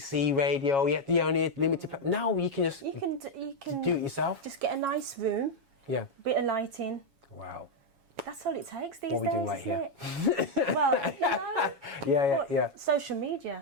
radio. You had the only limited. Now you can just you can do it yourself. Just get a nice room. Yeah. Bit of lighting. Wow. That's all it takes these days. What are we doing right here? Well, you know. Yeah. Social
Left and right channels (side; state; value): left; late; 7.3 ms